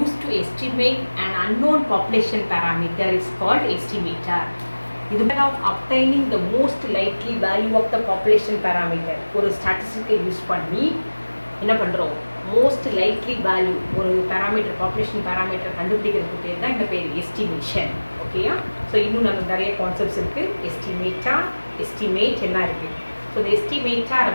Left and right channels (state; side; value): inverted; both; correlation -1.00